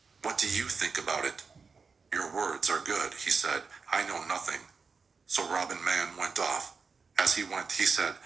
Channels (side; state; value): left; quieter; 5.0 dB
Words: "What do you think about it?" "Your words are good," he said. "I know nothing." So Robin Man went off. As he went, he said,